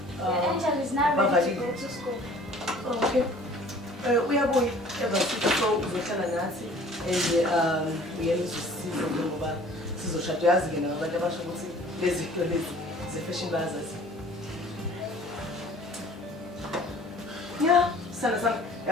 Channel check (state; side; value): normal; both; correlation 0.50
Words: Angel is now ready to go to school. Okay. Uyabuya ebasithi so uzohlala nathi uyena uzosiza ngoba sizoshada yazi ke nabantu abasho ukuthi lezi zinto lezi ze-fashion bazazi. Yeah, sana